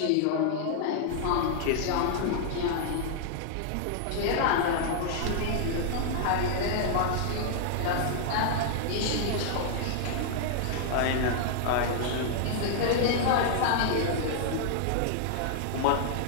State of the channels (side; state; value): both; different; correlation -0.01